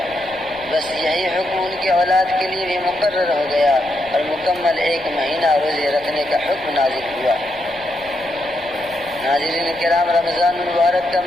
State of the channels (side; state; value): left; noise; rumble, 23 dB below the sound